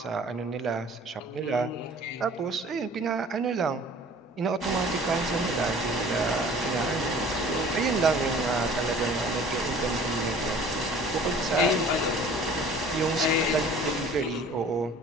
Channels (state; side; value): normal; both; correlation 0.48